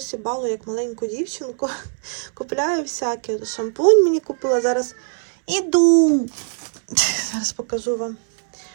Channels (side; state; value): left; silent; 65 dB below the other